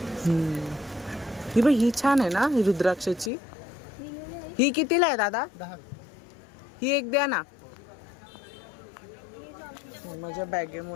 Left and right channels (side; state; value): right; drops out; at 3.3 s